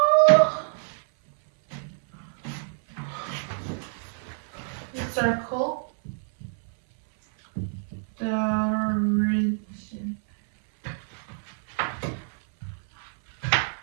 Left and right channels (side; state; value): left; silent; 60 dB below the other